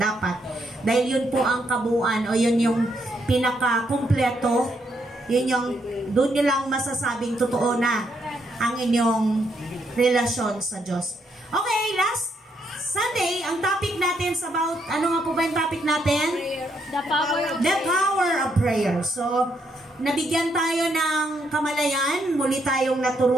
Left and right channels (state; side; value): normal; both; correlation 0.76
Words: Dahil yun po ang kabuuan o yun yung pinaka-kumpleto. Yun yung, doon nyo lang masasabing totoo na ang inyong relasyon sa Diyos. Okay, last Sunday, ang topic natin is about, ano nga po ba yung topic natin? The power of prayer. So, nabigyan tayo ng kamalayan, muli tayong